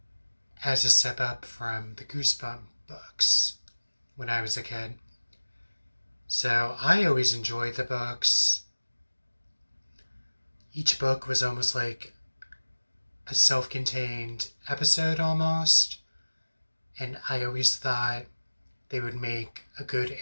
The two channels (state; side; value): inverted; both; correlation -1.00